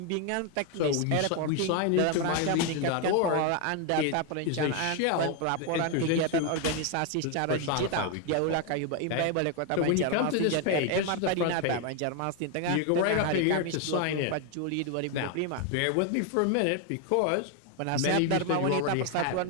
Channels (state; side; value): different; both; correlation 0.01